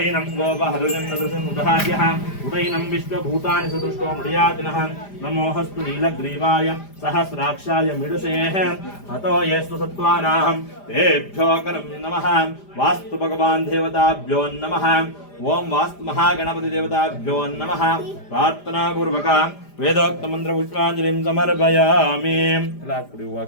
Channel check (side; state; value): right; late; 5.0 ms